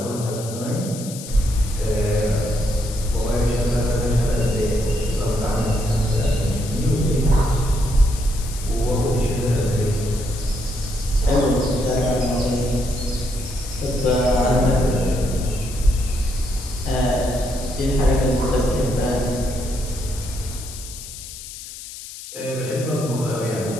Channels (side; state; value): left; noise; hiss, 12 dB below the sound